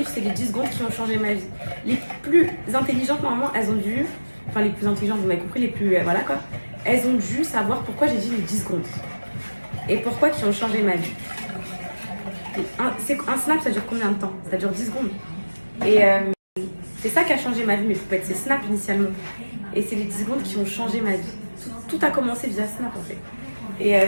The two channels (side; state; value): both; inverted; correlation -1.00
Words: c'est les 10 secondes qui ont changé ma vie. Les plus intelligentes, normalement, elles ont dû... Enfin, les plus intelligentes, vous m'avez compris, les plus... voilà, quoi. Elles ont dû savoir pourquoi j'ai dit les 10 secondes. Et pourquoi qui ont changé ma vie. Un snap, ça dure combien de temps? Ça dure 10 secondes. Et c'est ça qui a changé ma vie, mes poupettes. C'est Snap, initialement. Et c'est les 10 secondes qui ont changé ma vie. Tout a commencé via Snap, en fait. Et